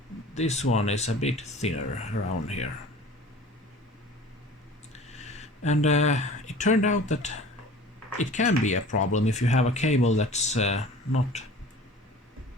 This one is a bit thinner around here. And it turned out that it can be a problem if you have a cable that's not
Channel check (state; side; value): normal; both; correlation 0.43